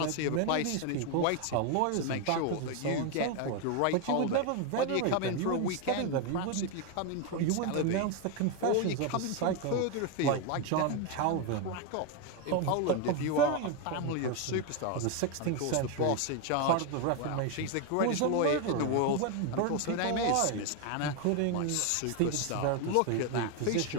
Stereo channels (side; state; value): both; different; correlation 0.01